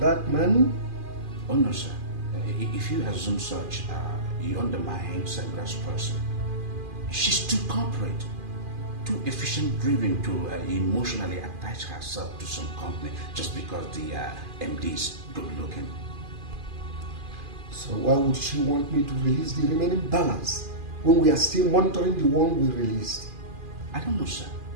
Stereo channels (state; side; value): late; left; 2.4 ms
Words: man? Oh no, sir. If you assume such, you undermine Sandra's person. She's too corporate, too efficient-driven to emotionally attach herself to some company just because the MD is good-looking. So why would she want me to release the remaining balance when we are still monitoring the one we released? I don't know, sir.